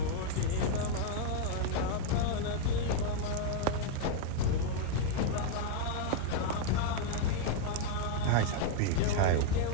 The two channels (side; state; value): both; different; correlation 0.01